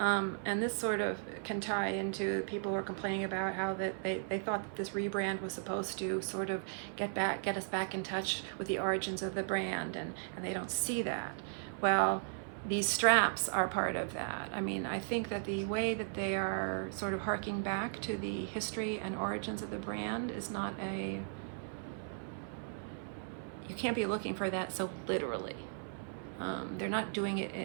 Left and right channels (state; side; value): silent; left; 53 dB below the other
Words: this sort of can tie into people who are complaining about how that they thought that this rebrand was supposed to sort of get us back in touch with the origins of the brand, and they don't see that. Well, these straps are part of that. I mean, I think that the way that they are sort of harking back to the history and origins of the brand is not you can't be looking for that so literally. They're not doing